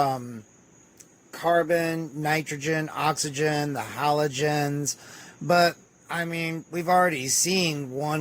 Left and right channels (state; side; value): identical; both; correlation 1.00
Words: carbon, nitrogen, oxygen, the halogens. But, I mean, we've already seen